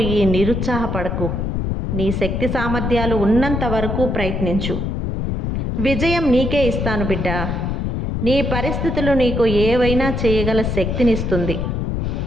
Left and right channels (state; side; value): noise; left; rumble, 1 dB below the sound